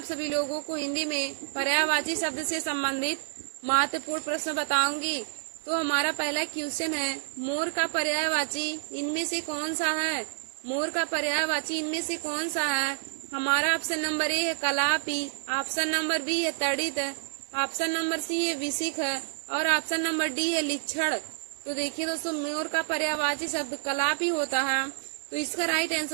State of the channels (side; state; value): left; silent; digital silence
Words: सभी लोगों को हिंदी में पर्यायवाची शब्द से संबंधित महत्वपूर्ण प्रश्न बताऊंगी। तो हमारा पहला क्वेश्चन है, मोर का पर्यायवाची इनमें से कौन सा है? मोर का पर्यायवाची इनमें से कौन सा है? हमारा ऑप्शन नंबर ए है कलापी, ऑप्शन नंबर बी है तड़ित, ऑप्शन नंबर सी है विशिख और ऑप्शन नंबर डी है लिच्छड़। तो देखिए दोस्तों, मोर का पर्यायवाची शब्द कलापी होता है। तो इसका right